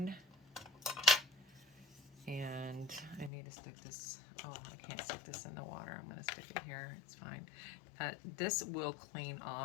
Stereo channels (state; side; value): drops out; right; at 3.3 s